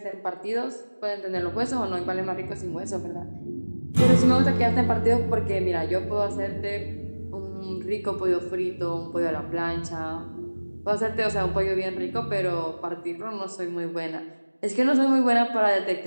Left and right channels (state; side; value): inverted; both; correlation -1.00